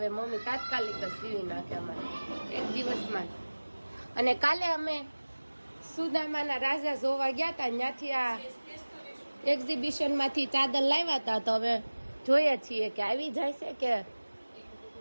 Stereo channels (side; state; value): both; inverted; correlation -1.00